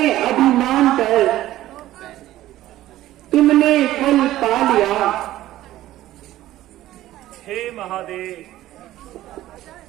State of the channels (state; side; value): quieter; left; 14.6 dB